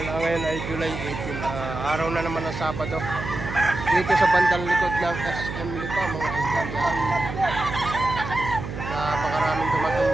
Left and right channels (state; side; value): noise; right; hum, 7 dB below the sound